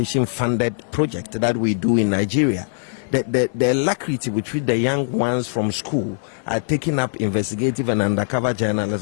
funded project that we do in Nigeria. The alacrity with which the young ones from school are taking up investigative and undercover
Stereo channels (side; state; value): right; silent; 59 dB below the other